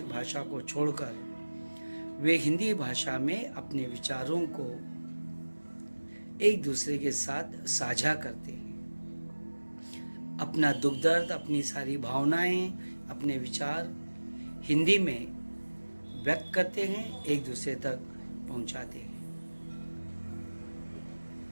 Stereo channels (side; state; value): both; inverted; correlation -1.00